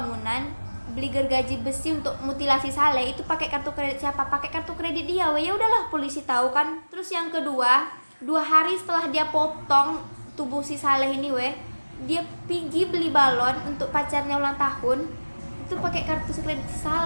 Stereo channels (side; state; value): both; inverted; correlation -1.00